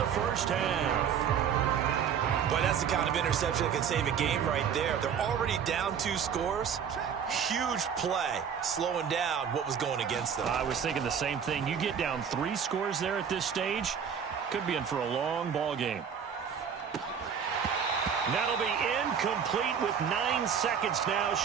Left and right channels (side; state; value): left; quieter; 7.6 dB